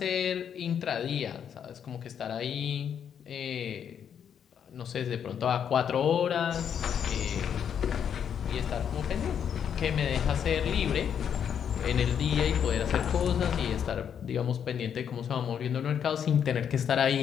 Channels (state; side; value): quieter; right; 8.3 dB